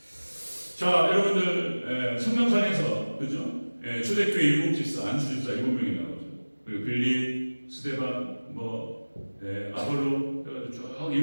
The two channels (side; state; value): both; inverted; correlation -1.00